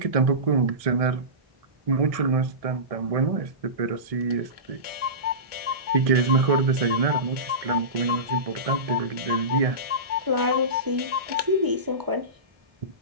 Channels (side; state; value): left; late; 1.6 ms